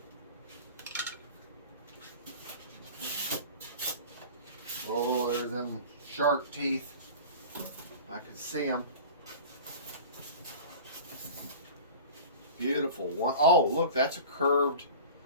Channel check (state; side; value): inverted; both; correlation -0.37